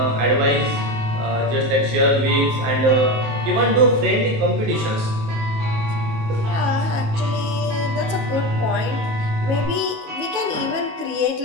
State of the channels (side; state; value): left; late; 19 ms